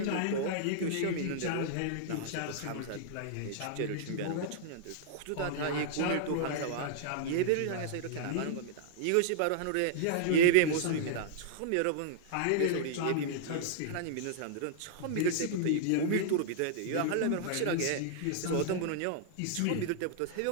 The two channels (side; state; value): both; different; correlation -0.01